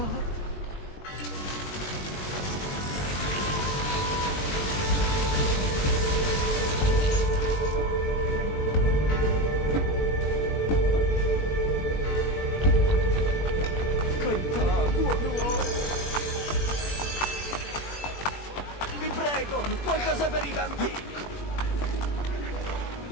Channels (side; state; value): right; late; 20 ms